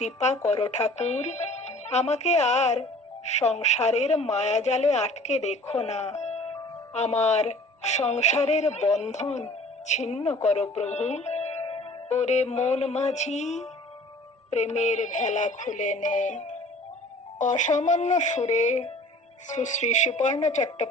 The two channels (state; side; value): normal; both; correlation 0.48